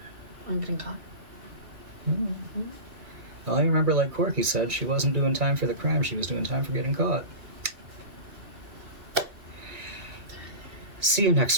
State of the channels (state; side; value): late; left; 2.3 ms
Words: I'm getting caught. Mm-hmm. Well, I remember, like Corky said, she wasn't doing time for the crime, she was doing time for getting caught. See you